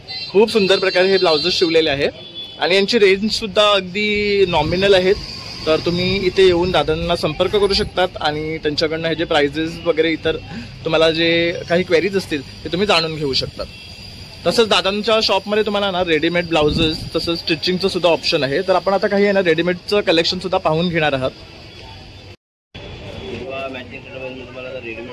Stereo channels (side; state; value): both; identical; correlation 1.00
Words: खूप सुंदर प्रकारे हे ब्लाउजेस शिवलेले आहे आणि यांची रेंज सुद्धा अगदी नॉमिनल आहेत. तर तुम्ही इथे येऊन दादांना संपर्क करू शकतात आणि त्यांच्याकडनं हे जे प्राइजेस वगैरे इतर तुम्हाला जे काही क्वेरीज असतील ते तुम्ही जाणून घेऊ शकतात. तसंच दादांच्या शॉपमध्ये तुम्हाला ना रेडीमेड ब्लाउजेस तसंच स्टिचिंगचं सुद्धा ऑप्शन आहे. तर आपण आता काही आहे ना रेडीमेडचं कलेक्शन सुद्धा पाहून घेणार आहात. मॅचिंग मी तुम्हाला